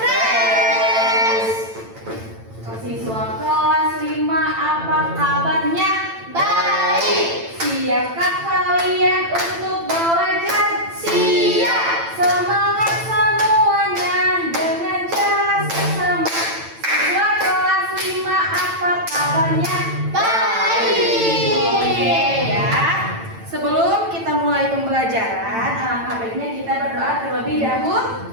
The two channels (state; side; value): late; left; 8.9 ms